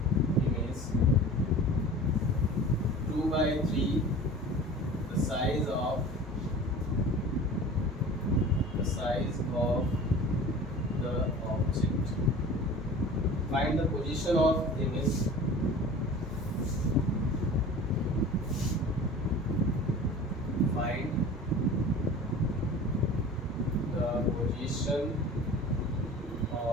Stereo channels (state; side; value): normal; both; correlation 0.40